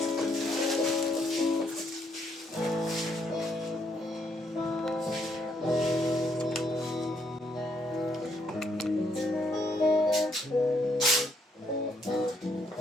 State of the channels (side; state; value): both; normal; correlation 0.73